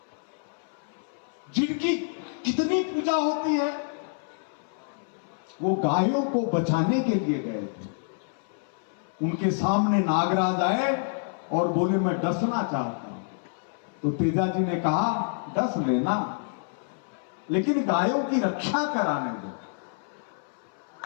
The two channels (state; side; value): silent; right; 60 dB below the other